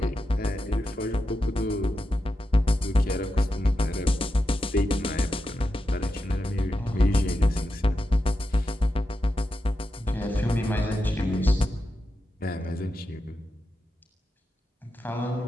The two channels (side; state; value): both; normal; correlation 0.89